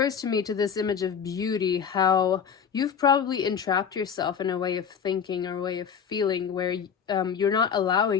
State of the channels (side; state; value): right; quieter; 7.3 dB